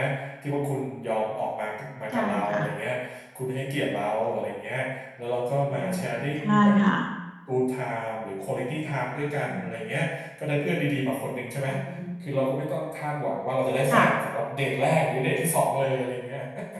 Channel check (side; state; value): both; identical; correlation 1.00